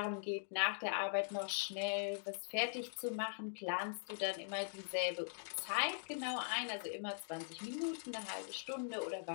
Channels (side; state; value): right; silent; digital silence